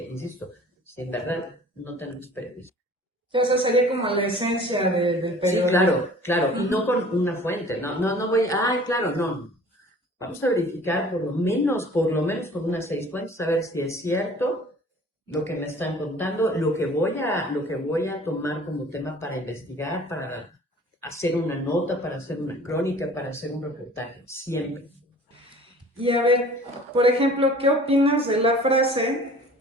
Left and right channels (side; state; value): both; normal; correlation 0.48